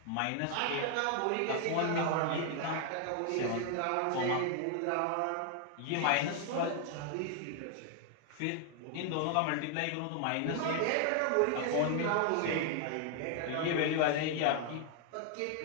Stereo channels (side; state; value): both; different; correlation 0.00